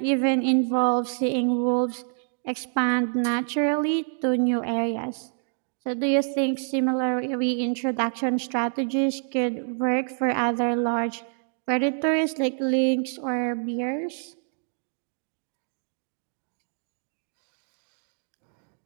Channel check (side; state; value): left; silent; 60 dB below the other